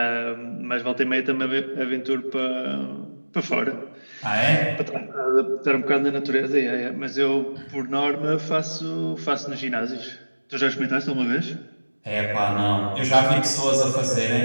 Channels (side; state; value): both; inverted; correlation -1.00